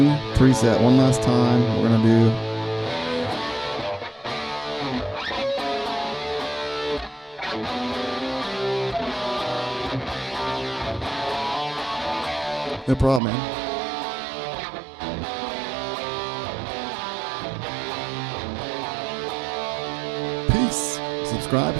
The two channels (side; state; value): left; drops out; at 13.2 s